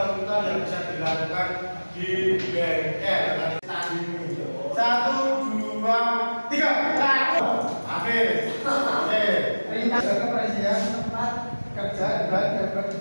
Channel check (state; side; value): inverted; both; correlation -1.00